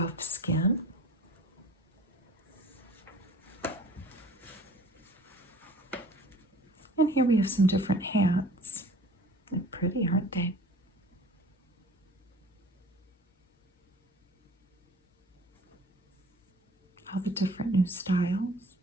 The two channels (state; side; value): normal; both; correlation 0.46